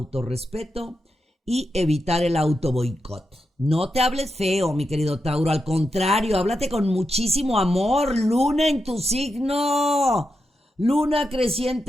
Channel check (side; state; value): both; normal; correlation 0.87